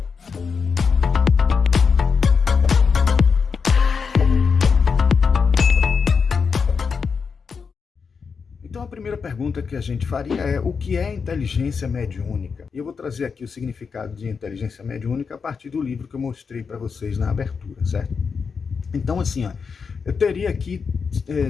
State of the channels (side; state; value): right; quieter; 5.6 dB